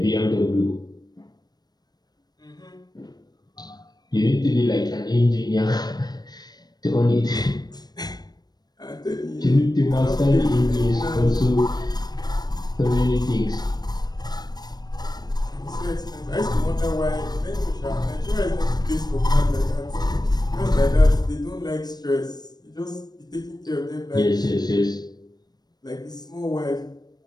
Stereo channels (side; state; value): right; late; 0.19 ms